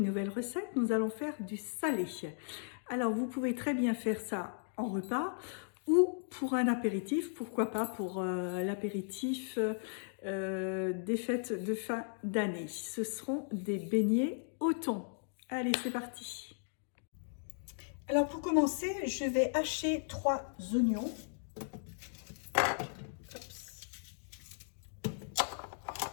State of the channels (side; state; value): right; silent; digital silence